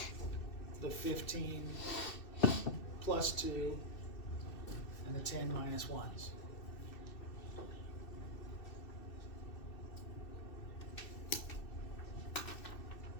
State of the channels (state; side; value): late; right; 2.6 ms